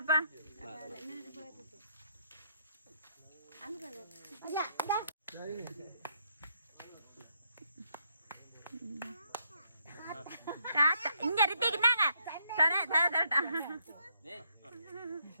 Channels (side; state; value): both; inverted; correlation -0.73